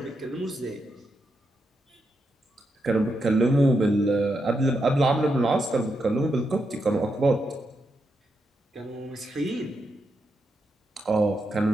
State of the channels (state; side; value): normal; both; correlation 0.83